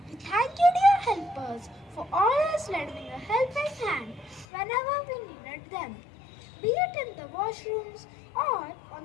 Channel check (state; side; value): drops out; right; at 4.5 s